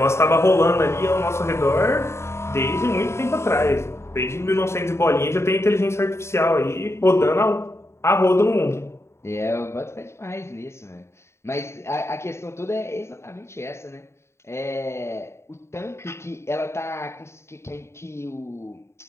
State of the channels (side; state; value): right; late; 0.13 ms